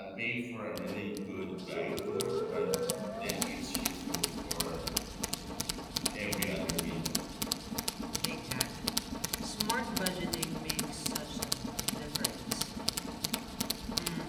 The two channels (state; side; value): identical; both; correlation 1.00